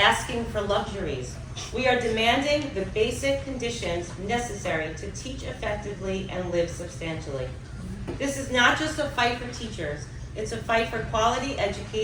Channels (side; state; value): both; identical; correlation 1.00